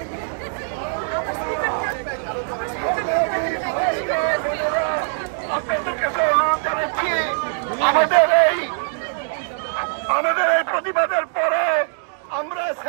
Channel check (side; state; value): left; silent; digital silence